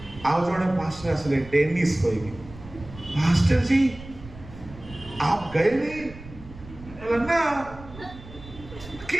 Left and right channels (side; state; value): right; noise; rumble, 17 dB below the sound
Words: आ जने पास आसले टेनिस कहिबी मास्टर जी आप गए नहीं ना